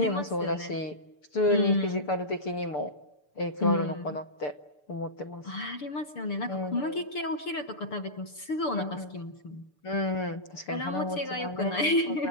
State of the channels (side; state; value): right; late; 6.8 ms